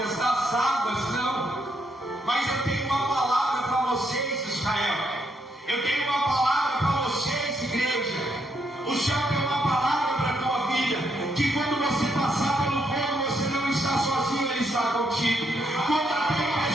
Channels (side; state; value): both; normal; correlation 0.76